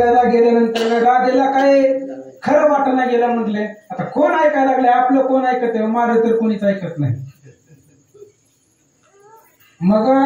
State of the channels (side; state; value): both; identical; correlation 1.00